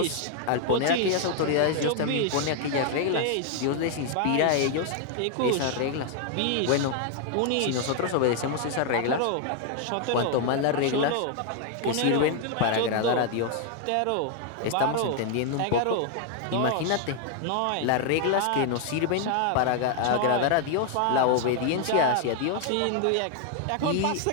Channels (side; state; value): both; different; correlation 0.00